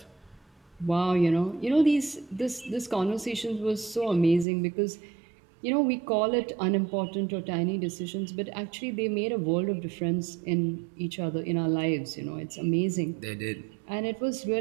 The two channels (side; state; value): left; drops out; at 4.5 s